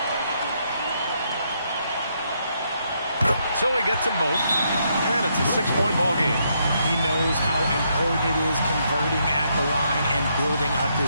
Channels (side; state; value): both; inverted; correlation -0.76